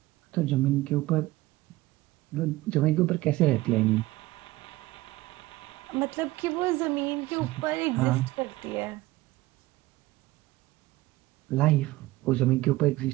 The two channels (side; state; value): left; quieter; 18.5 dB